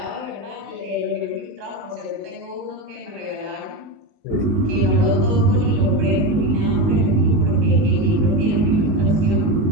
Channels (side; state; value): left; late; 19 ms